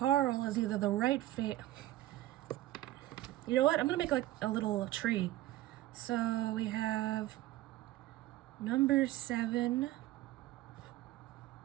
is either the right You know what? I'm gonna make like a little tree. So we have number 7.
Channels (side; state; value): left; quieter; 15.7 dB